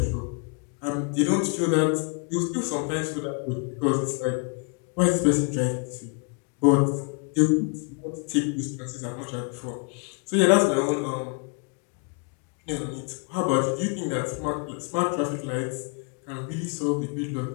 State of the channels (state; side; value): quieter; right; 36.0 dB